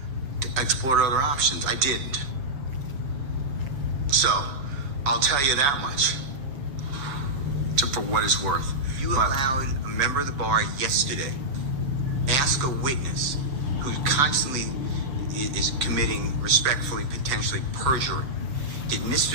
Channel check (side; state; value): left; late; 7.0 ms